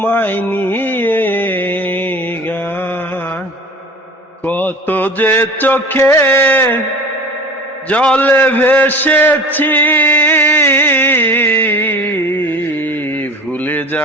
নিয়ে গান। কত যে চোখে জলে ভেসেছি, ভুলে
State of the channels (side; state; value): both; normal; correlation 0.39